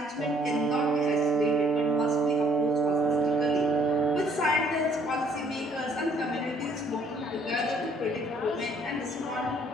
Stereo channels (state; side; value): normal; both; correlation 0.63